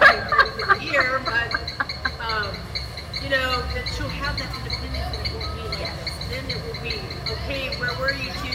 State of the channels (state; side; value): identical; both; correlation 1.00